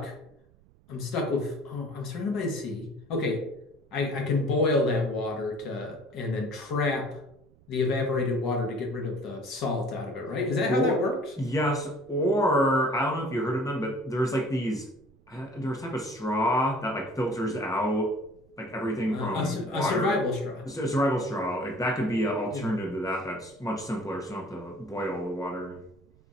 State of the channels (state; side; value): noise; right; rumble, 29 dB below the sound